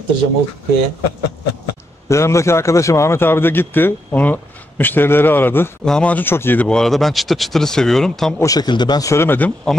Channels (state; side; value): normal; both; correlation 0.81